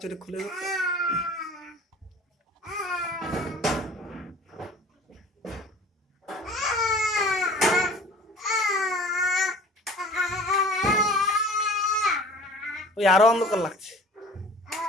এটা খুলে দাও। ওই আরো অন্ধকার লাগছে,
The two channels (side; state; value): both; normal; correlation 0.45